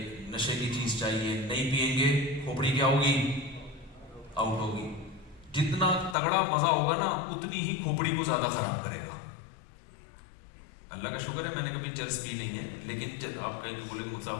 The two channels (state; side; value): drops out; right; at 6.2 s